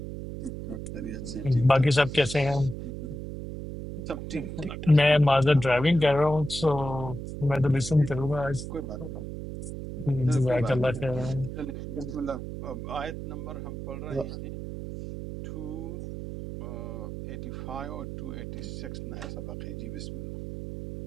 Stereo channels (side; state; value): right; noise; hum, 7 dB below the sound